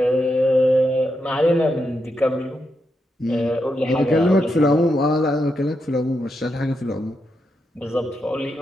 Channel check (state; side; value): normal; both; correlation 0.83